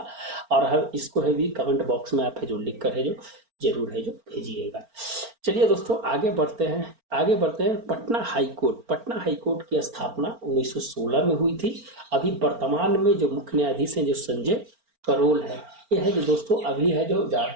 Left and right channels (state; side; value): late; left; 4.4 ms